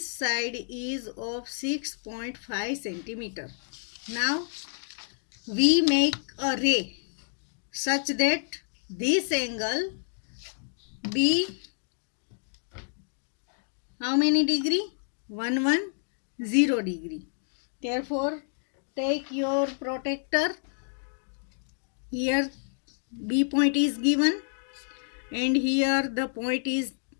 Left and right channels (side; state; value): right; silent; digital silence